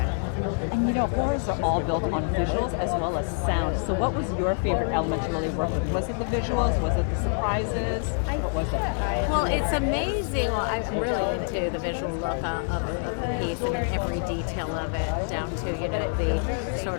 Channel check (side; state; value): right; silent; 55 dB below the other